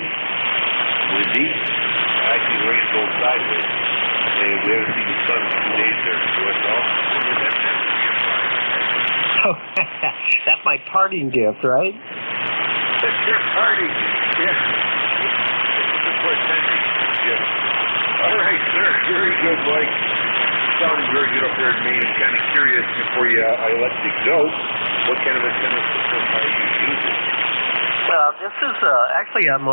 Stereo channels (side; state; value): both; inverted; correlation -1.00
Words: windy. Actually, the rain's going sideways. And we haven't seen the sun in 2 days there. So it's all. Oh, that's my parting gift, right? That's your party. Yeah. Yes. All right, sir. Very good, Mike. sounding very good up there in Maine. I'm kind of curious before I let you go, what kind of antenna system are you using? Well, this is actually I'm